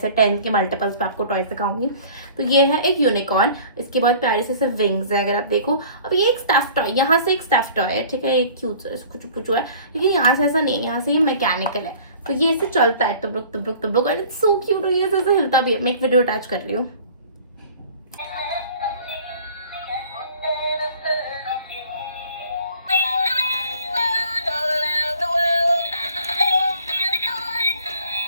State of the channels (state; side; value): inverted; both; correlation -0.48